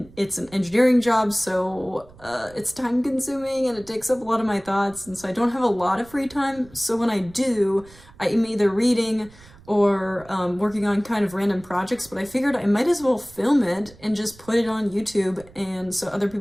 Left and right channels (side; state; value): right; noise; rumble, 23 dB below the sound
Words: an engineering job, so it's time consuming and it takes up a lot of my thoughts, and so I don't have a lot of free time. So when I do, I'm either reading or working on kind of random projects, but I figured I might as well film it and just put it on YouTube, and so other